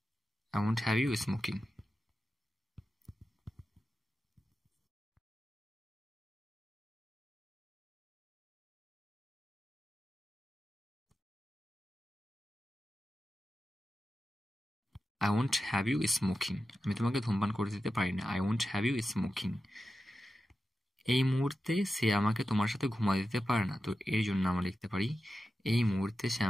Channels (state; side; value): normal; both; correlation 0.91